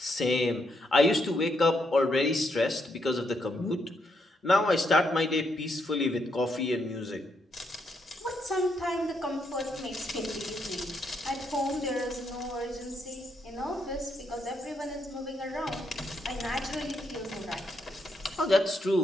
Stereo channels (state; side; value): normal; both; correlation 0.77